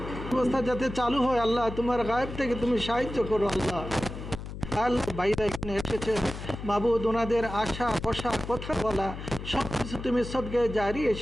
ব্যবস্থা যাতে চালু হয়, আল্লাহ তোমার গায়েব থেকে তুমি সাহায্য করো। আল্লাহ ভাইরা এখানে এসেছে, মাবুদ ওনাদের আশা, বসা, কথা বলা সব কিছু তুমি সদকায়ে জারি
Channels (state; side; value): noise; left; hum, 9 dB below the sound